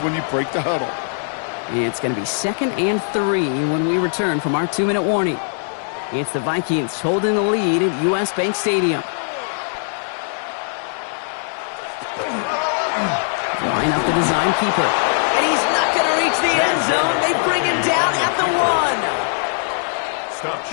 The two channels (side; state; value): right; silent; digital silence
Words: when you break the huddle. It's going to be 2nd and 3 when we return from our 2-minute warning. It's the Vikings holding the lead at US Bank Stadium. Line up the design keeper. And he's not going to reach the end zone. They bring him down at the 1.